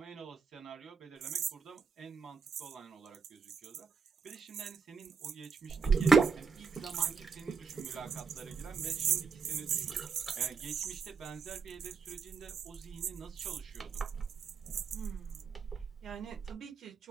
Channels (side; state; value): left; quieter; 5.4 dB